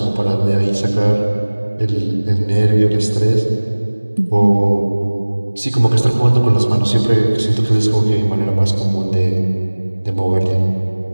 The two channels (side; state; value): both; inverted; correlation -1.00